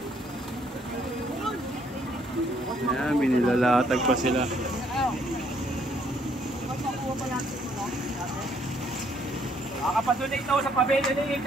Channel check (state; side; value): normal; both; correlation 0.67